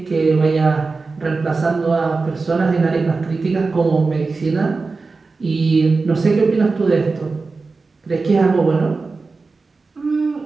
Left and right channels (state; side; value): quieter; left; 4.0 dB